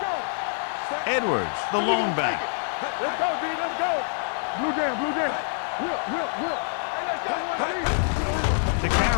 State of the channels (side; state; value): right; silent; digital silence